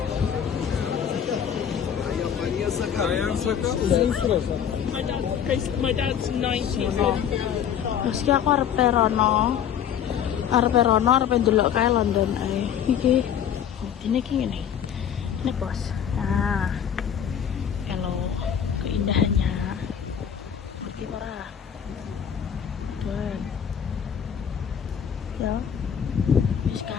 My dad's 90. Terus ki aku arep rono arep ndelok kae London ae. Iki dene ki ngene. Ini bos. Nah. Kalau keindahannya ngerti ora? Tuan. Ya. wis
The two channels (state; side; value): quieter; right; 8.7 dB